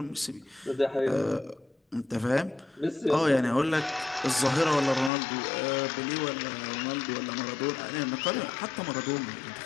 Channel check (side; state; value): right; drops out; at 5.1 s